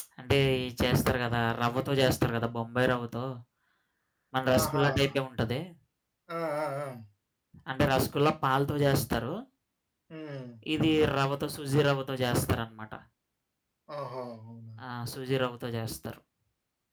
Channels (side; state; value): both; identical; correlation 1.00